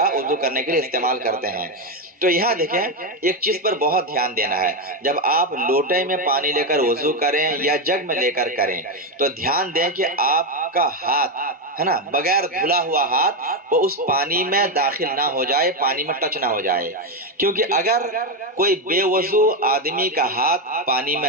وضو کرنے کے لیے استعمال کرتے ہیں۔ تو یہاں دیکھیں ایک چیز پر بہت دھیان دینا ہے، جب آپ لوٹے میں پانی لے کر وضو کریں یا جگ میں لے کر کریں تو دھیان دیں کہ آپ کا ہاتھ ہے نا بغیر دھلا ہوا ہاتھ وہ اس پانی میں داخل نہ ہو جائے، پانی میں ٹچ نہ ہو جائے، کیونکہ اگر کوئی بے وضو آدمی کا ہاتھ پانی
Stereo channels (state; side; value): normal; both; correlation 0.08